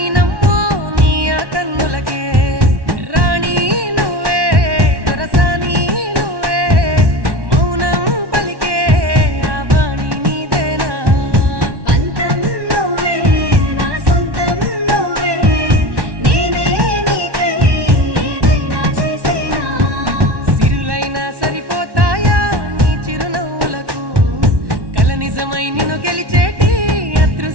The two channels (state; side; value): late; left; 1.1 ms